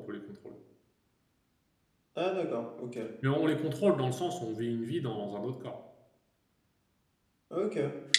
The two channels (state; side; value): identical; both; correlation 1.00